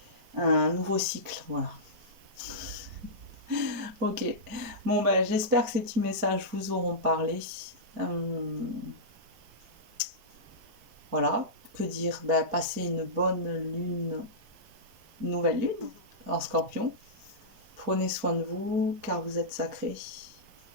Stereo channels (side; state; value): left; late; 4.7 ms